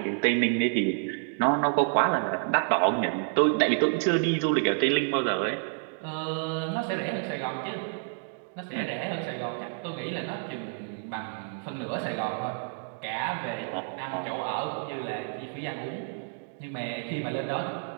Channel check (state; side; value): silent; left; 56 dB below the other